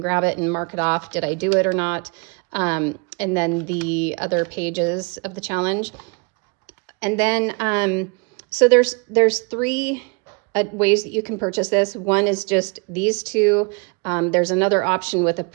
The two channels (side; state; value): left; quieter; 33.2 dB